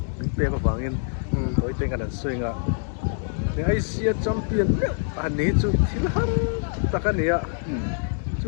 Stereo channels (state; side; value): silent; right; digital silence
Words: te ko wangin hoi te kan soi nga le Asia champion ani chu thilham takania